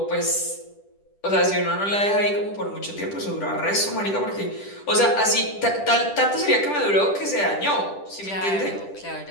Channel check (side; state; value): right; late; 10 ms